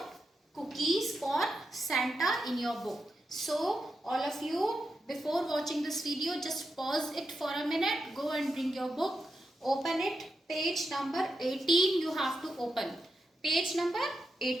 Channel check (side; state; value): both; normal; correlation 0.88